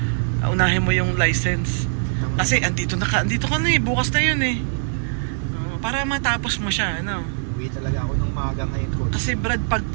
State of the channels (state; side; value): silent; left; 64 dB below the other